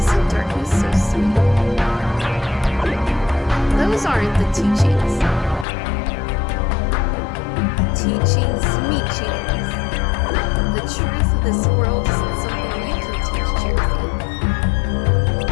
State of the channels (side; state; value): right; drops out; at 5.7 s